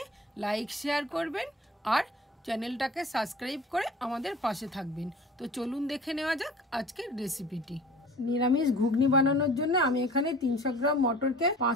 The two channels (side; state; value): both; normal; correlation 0.44